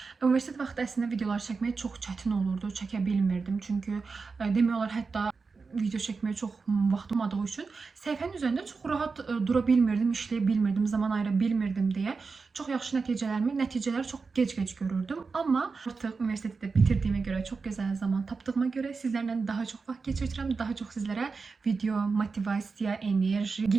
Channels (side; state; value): left; quieter; 4.6 dB